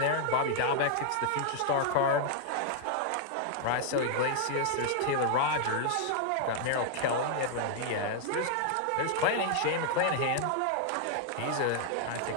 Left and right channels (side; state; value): both; different; correlation 0.00